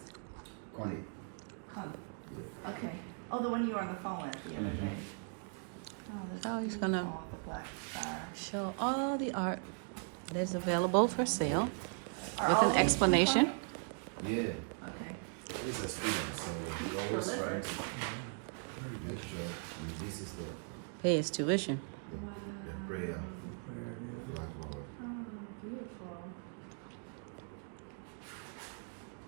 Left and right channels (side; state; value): left; silent; 52 dB below the other